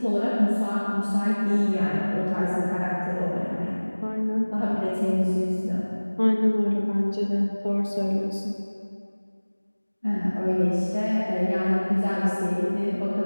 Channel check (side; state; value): both; inverted; correlation -1.00